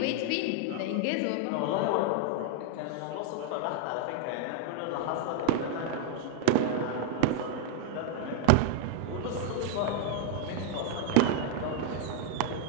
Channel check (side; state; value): both; different; correlation 0.00